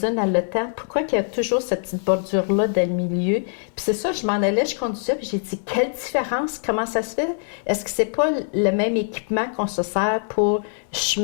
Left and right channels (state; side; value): silent; right; 63 dB below the other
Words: à l'OTAN, pourquoi qu'il y a toujours cette petite bordure-là dans le milieu? Puis c'est ça, je m'en allais, je conduisais, puis j'ai dit, quelle différence, comment ça se fait? Est-ce que c'est pas le même équipement qu'on se sert pour